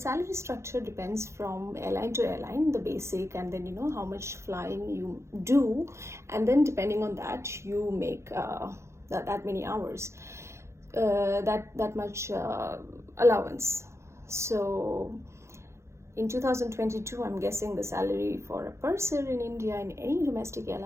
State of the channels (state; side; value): late; left; 0.13 ms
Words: structure depends from airline to airline, the basic, and then how much flying you do, and then depending on that you make that many hours, that much allowance. So in 2022, I'm guessing the salary for a purser in India in any domestic